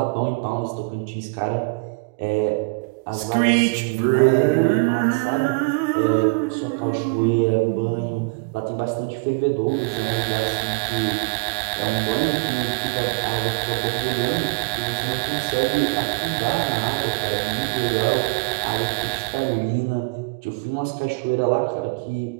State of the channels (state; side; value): quieter; left; 30.8 dB